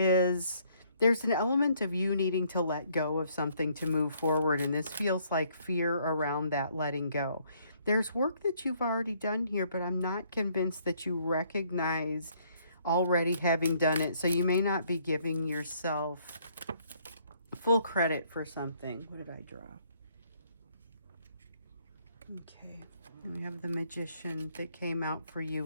an element of you needing to let go of something to move forward, and this feels like fear around that letting go. There's work that you've already done here, but I'm not convinced that you recognize already having done it, so you may not be giving yourself full credit for something. What did I draw? Okay, and we have the Magician that came out for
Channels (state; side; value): inverted; both; correlation -0.66